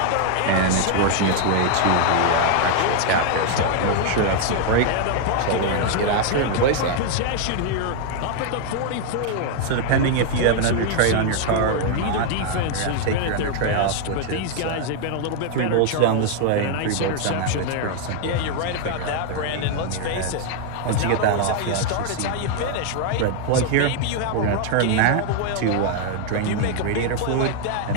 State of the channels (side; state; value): both; different; correlation 0.00